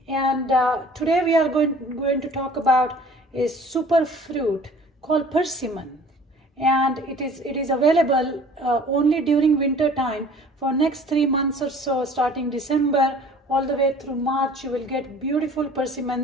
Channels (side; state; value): both; normal; correlation 0.49